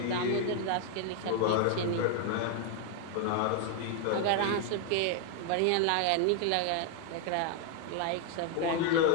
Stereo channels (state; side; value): different; both; correlation 0.00